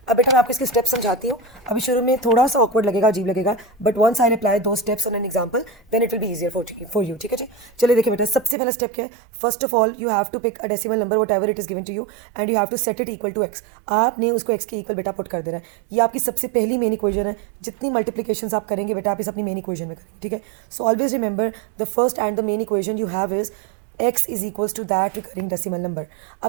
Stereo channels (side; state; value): left; drops out; at 8.6 s